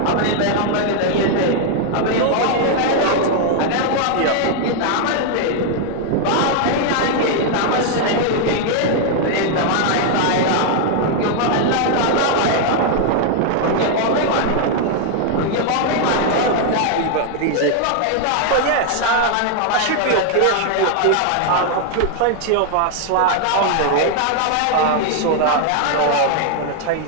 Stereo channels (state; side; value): different; both; correlation 0.00